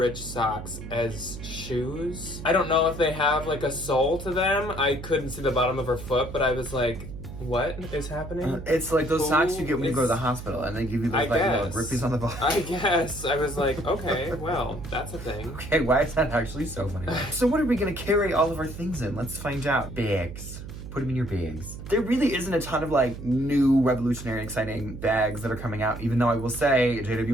socks as shoes. I don't know if they have like a sole to them. I couldn't see the bottom of her foot, but I was like, what is happening? It's like those socks you get when you go to the It's- hospital and they give you those I like little guess. grippies on the bottom. I guess. I was like, okay, well, that's a thing. Okay, why is that actually so funny? So what are we gonna carry all of our things in? Let's find out. Bags. Put them in your bags. There really isn't a ton of like new revolutionary exciting bags that are coming out, even though I will say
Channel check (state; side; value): noise; right; hum, 11 dB below the sound